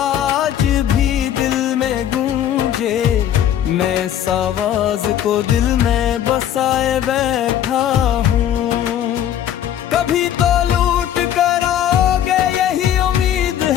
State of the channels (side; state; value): right; quieter; 10.5 dB